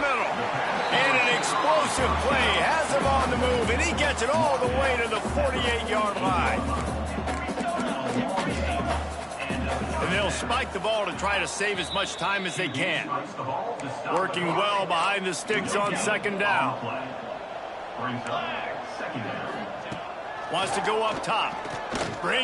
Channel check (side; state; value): both; identical; correlation 1.00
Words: middle. And an explosive play has him on the move, and he gets it all the way to the 48-yard line. And they'll spike the ball to try to save as much time as they can. Working well behind the sticks on second down. Wants to go up top.